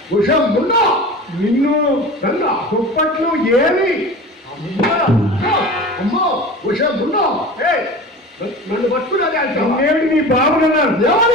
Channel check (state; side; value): normal; both; correlation 0.35